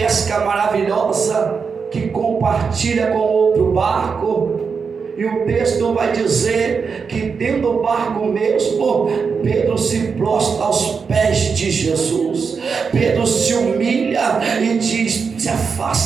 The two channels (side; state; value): left; quieter; 5.6 dB